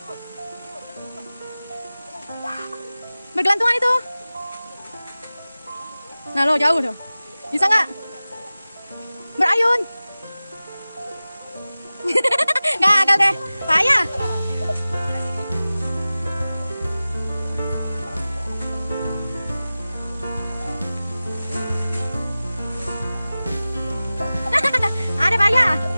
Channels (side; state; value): both; inverted; correlation -0.97